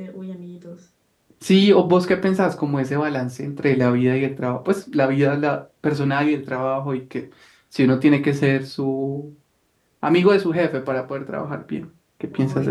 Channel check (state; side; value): identical; both; correlation 1.00